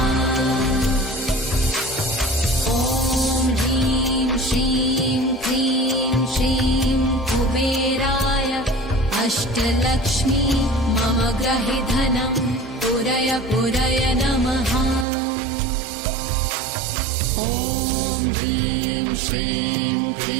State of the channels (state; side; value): drops out; left; at 15.1 s